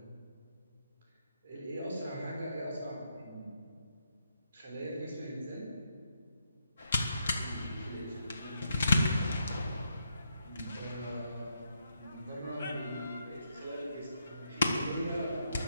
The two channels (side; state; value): both; inverted; correlation -0.78